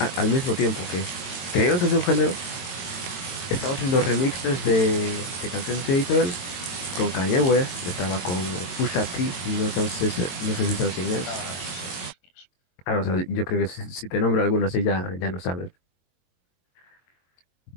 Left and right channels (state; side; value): late; right; 22 ms